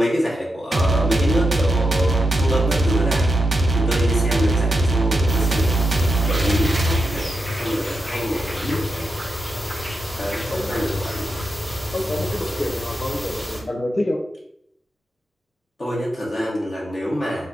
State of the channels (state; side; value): normal; both; correlation 0.86